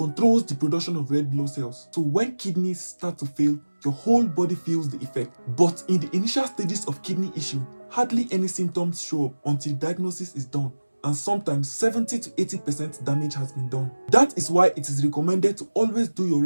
the production of red blood cells. So when kidneys start to fail, your whole body feels the effect. But in the initial stages of kidney issue, hardly any symptoms show up until diagnosis is done, and sometimes 70 to 80% damage has been done. That is why it is recommended to always do your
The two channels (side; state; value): both; inverted; correlation -1.00